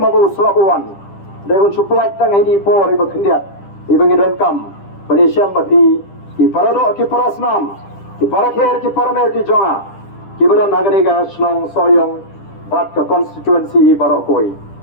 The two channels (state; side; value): late; right; 10 ms